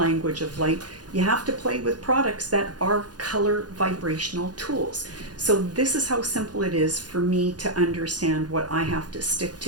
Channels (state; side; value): late; left; 0.69 ms